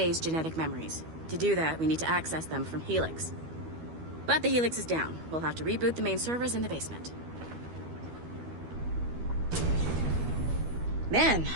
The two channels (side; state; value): left; late; 12 ms